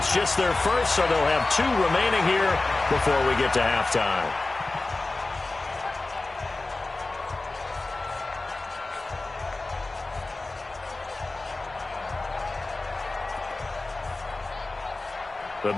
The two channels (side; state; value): right; quieter; 3.2 dB